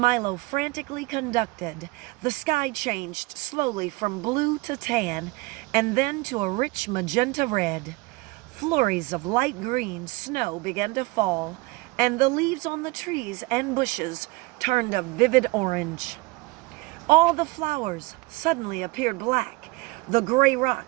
frantically conducted, the sky changed slowly from blue to tan and then to a rich magenta red. Flurries of light green snow began to fall, and the leaves on the trees and bushes turned a vivid orange. All the flowers suddenly appeared black. The gray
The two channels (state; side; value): quieter; left; 23.5 dB